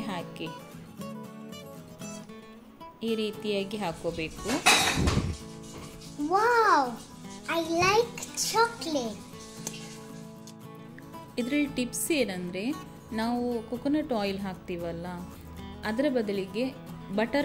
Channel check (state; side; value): identical; both; correlation 1.00